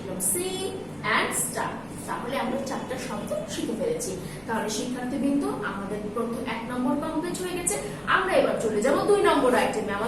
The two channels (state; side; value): noise; right; hum, 28 dB below the sound